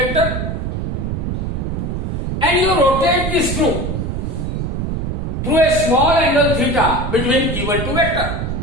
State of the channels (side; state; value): right; noise; rumble, 2 dB below the sound